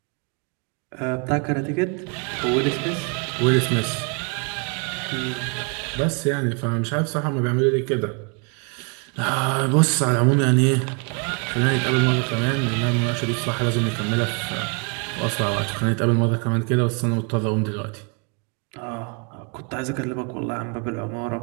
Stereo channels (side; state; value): left; quieter; 35.7 dB